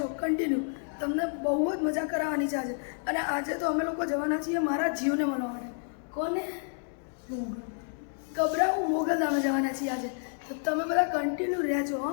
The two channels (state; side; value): silent; right; 58 dB below the other